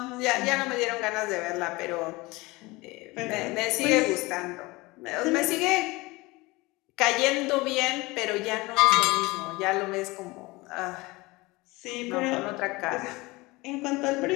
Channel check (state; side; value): quieter; right; 22.6 dB